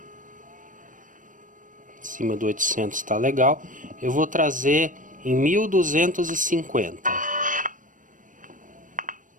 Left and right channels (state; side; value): late; left; 0.38 ms